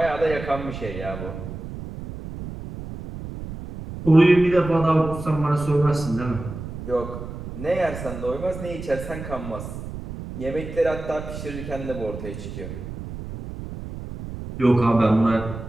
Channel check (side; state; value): right; noise; rumble, 10 dB below the sound